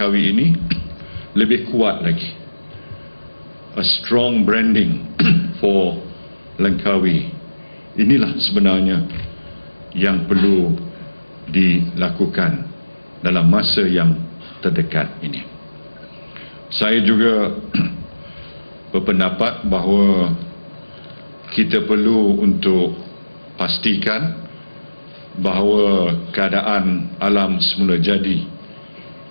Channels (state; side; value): inverted; both; correlation -1.00